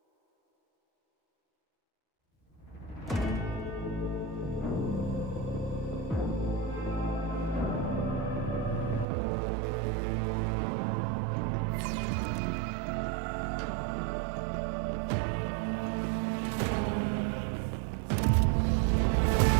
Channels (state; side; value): drops out; left; at 9.1 s